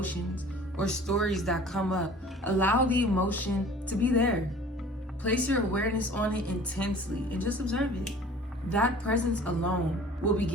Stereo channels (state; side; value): normal; both; correlation 0.47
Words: or stories that come up, allow the emotion to be there. Place your awareness on it intensely and just observe it. That presence alone will